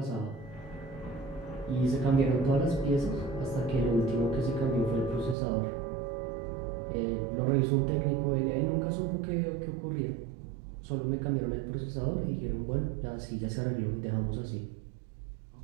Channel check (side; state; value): left; drops out; at 5.4 s